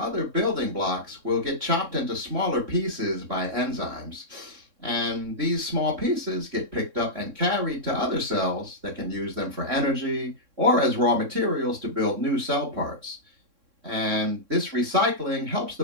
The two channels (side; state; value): left; late; 3.6 ms